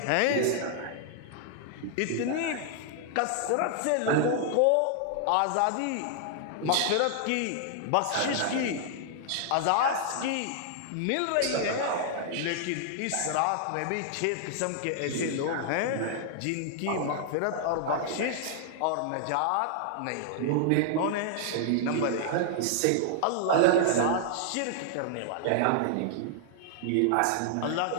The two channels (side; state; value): both; different; correlation -0.01